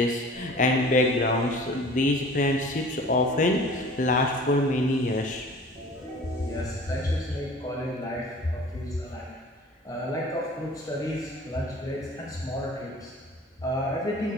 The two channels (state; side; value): normal; both; correlation 0.45